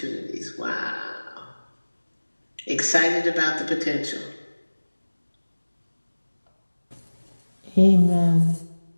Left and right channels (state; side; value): inverted; both; correlation -1.00